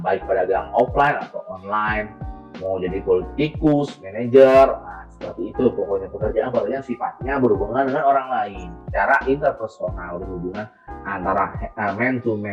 baik pedagang offline atau online, mau jadi politikus, manajer, nah, seperti itu pokoknya pekerjaan sifatnya berhubungan dengan orang lain, secara interpersonal, berhubungan antara man to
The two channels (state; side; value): identical; both; correlation 1.00